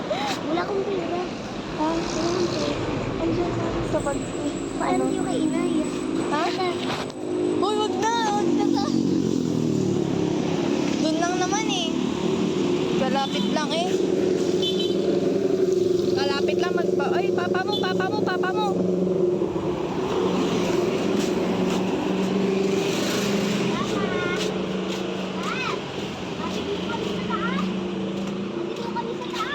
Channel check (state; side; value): identical; both; correlation 1.00